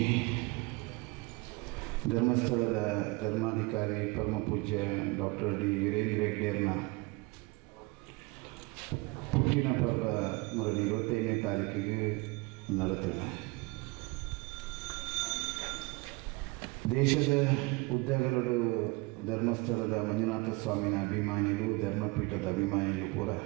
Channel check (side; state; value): left; quieter; 25.1 dB